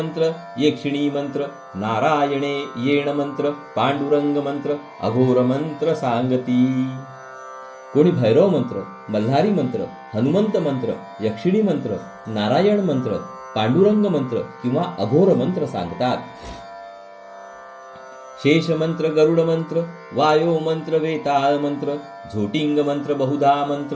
यक्षिणी मंत्र, नारायणे येण मंत्र, पांडुरंग मंत्र, अघोर मंत्र सांगती. कोणी भैरव मंत्र, मल्हारी मंत्र, हनुमंत मंत्र, यक्षिणी मंत्र, नारायण मंत्र, पांडुरंग मंत्र किंवा अघोर मंत्र सांगतात. शेष मंत्र, गरुड मंत्र, वायो मंत्र, वेताळ मंत्र, झोटिंग मंत्र, बहुधा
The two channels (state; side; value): identical; both; correlation 1.00